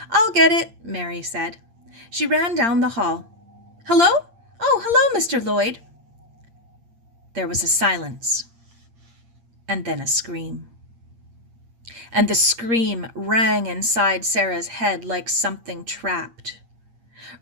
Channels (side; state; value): left; late; 8.7 ms